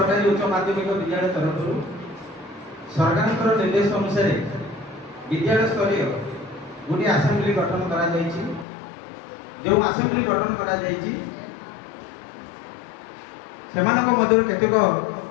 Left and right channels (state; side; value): drops out; right; at 8.7 s